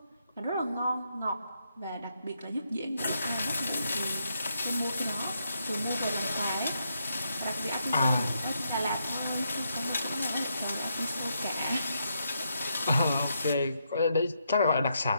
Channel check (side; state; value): both; inverted; correlation -0.80